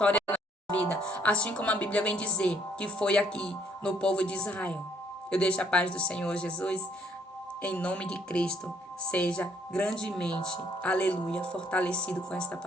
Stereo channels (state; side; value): normal; both; correlation 0.66